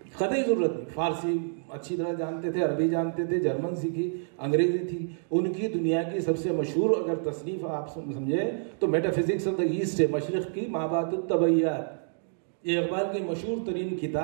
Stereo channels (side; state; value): left; silent; digital silence